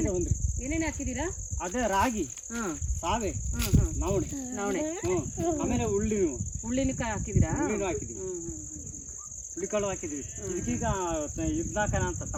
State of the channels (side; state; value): both; identical; correlation 1.00